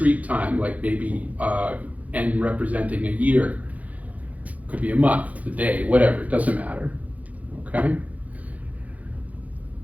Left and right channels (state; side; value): late; left; 0.073 ms